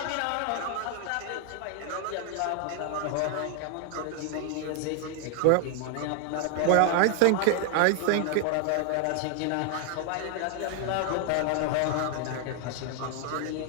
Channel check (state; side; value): different; both; correlation 0.00